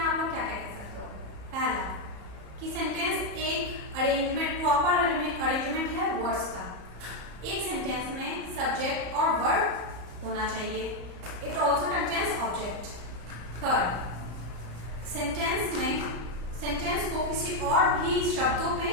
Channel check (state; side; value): late; left; 34 ms